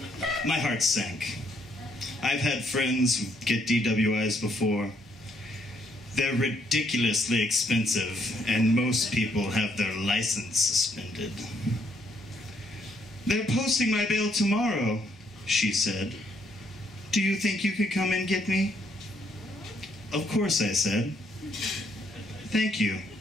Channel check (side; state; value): both; normal; correlation 0.71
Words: My heart sank. I've had friends get DWIs before. They're ridiculously expensive, and most people have their license suspended. "They're posting my bail tomorrow," she said. "Do you think you could come and get me?" "Of course," I said. "Thank you."